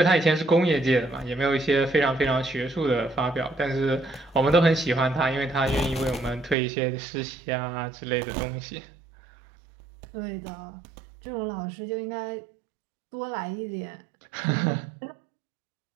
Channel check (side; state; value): left; drops out; at 6.6 s